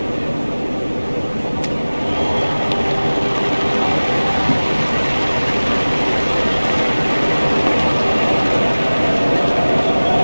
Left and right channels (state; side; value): inverted; both; correlation -1.00